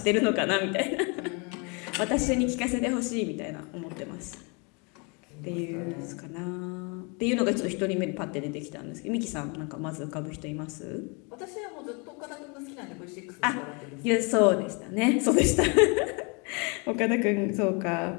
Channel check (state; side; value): quieter; right; 32.2 dB